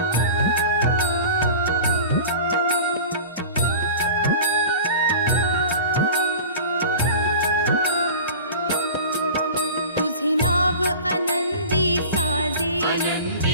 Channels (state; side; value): inverted; both; correlation -0.37